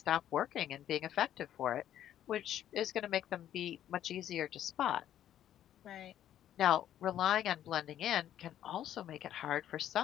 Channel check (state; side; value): quieter; right; 11.3 dB